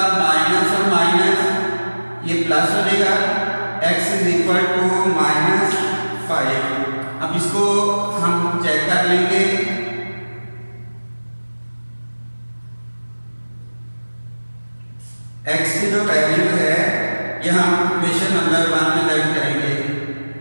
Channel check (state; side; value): inverted; both; correlation -1.00